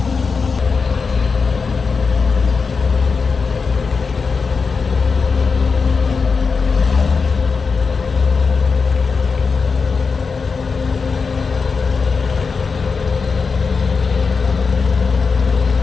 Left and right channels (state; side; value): quieter; right; 5.0 dB